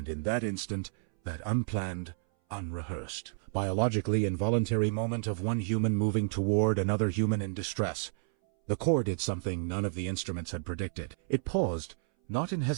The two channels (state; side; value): silent; left; 57 dB below the other